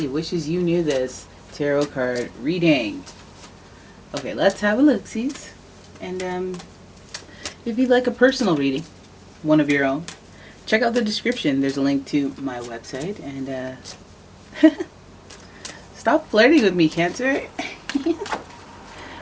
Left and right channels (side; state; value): both; identical; correlation 1.00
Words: Wishes You Knew This tarot card reading. Okay, let's have a look-sees. And if you'd like a personal reading, one of your own, check out the description. There's a link to my website, and stop flirting with me, Cancer.